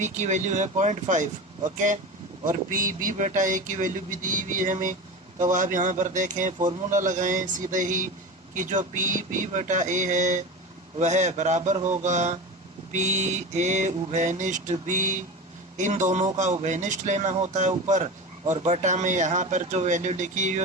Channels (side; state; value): both; normal; correlation 0.27